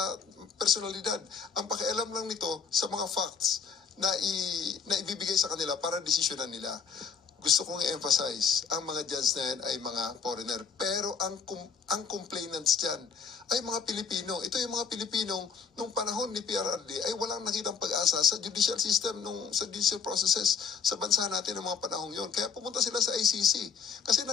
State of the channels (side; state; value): right; quieter; 6.2 dB